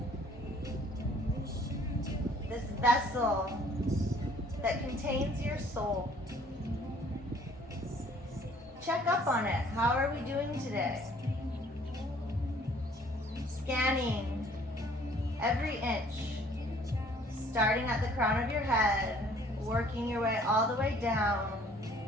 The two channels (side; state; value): both; normal; correlation 0.57